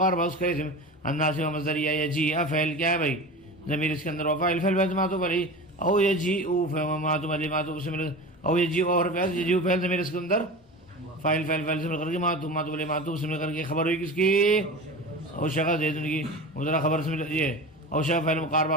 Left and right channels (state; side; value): normal; both; correlation 0.31